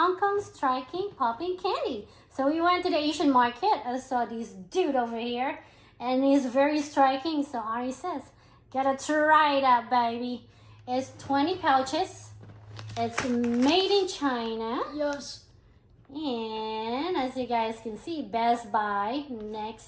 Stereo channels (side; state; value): both; identical; correlation 1.00